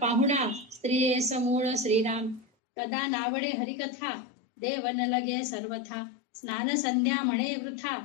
स्त्रिये समूळ श्रीराम. कदा नावडे हरिकथा देवन लगे सर्वथा. स्नान संध्या म्हणे वृथा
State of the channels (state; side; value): drops out; right; at 2.5 s